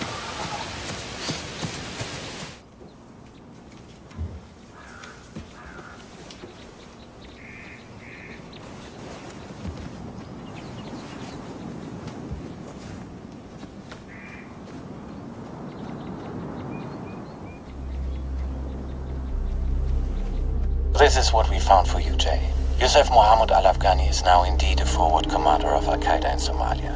This is what we found for you, Jay. Yusuf Mohammed al-Afghani is now indeed a forward commander of Al-Qaeda in Somalia.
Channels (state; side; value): identical; both; correlation 1.00